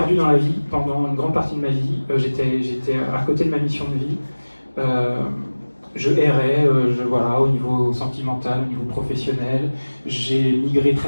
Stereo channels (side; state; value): both; inverted; correlation -1.00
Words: dans la vie pendant une grande partie de ma vie. J'étais à côté de ma mission de vie. Je errais, voilà, au niveau sentimental, au niveau professionnel. J'ai migré